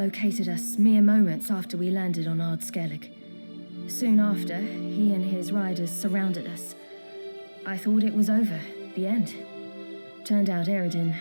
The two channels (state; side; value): inverted; both; correlation -1.00